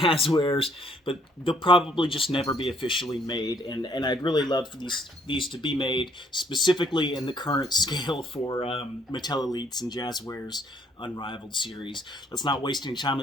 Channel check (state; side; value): normal; both; correlation 0.66